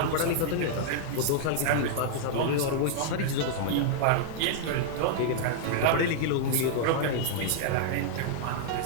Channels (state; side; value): different; both; correlation -0.01